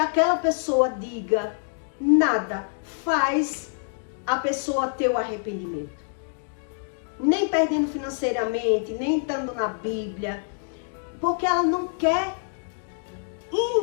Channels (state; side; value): silent; right; digital silence